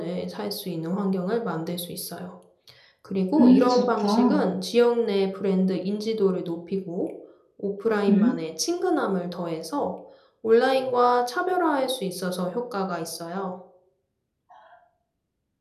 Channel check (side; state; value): both; identical; correlation 1.00